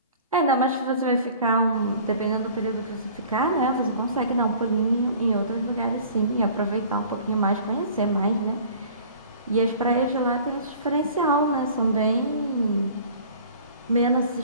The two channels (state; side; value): inverted; both; correlation -0.48